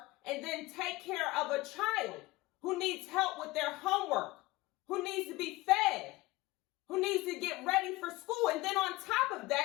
and then take care of a child who needs help with their homework, who needs to be fed, who needs to get ready for school. And then on top of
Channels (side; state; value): right; quieter; 20.5 dB